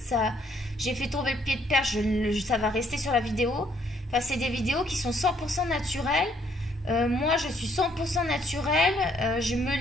j'ai fait tomber le pied de perche, ça va rester sur la vidéo. Enfin, c'est des vidéos qui sont 100% naturelles. Moi, je suis 100% naturelle. Je me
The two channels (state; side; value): normal; both; correlation 0.67